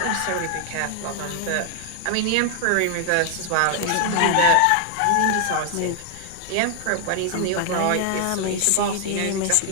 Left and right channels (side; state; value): both; different; correlation 0.00